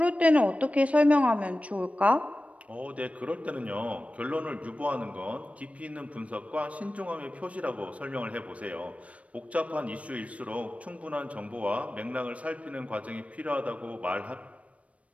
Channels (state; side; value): late; left; 0.065 ms